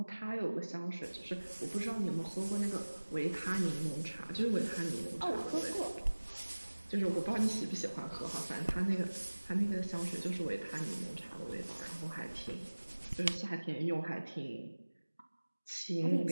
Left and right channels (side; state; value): both; inverted; correlation -1.00